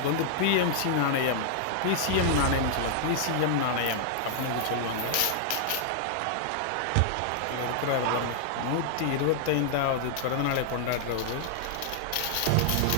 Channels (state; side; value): different; both; correlation -0.01